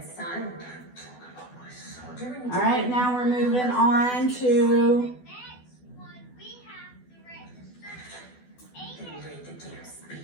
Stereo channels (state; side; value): late; right; 12 ms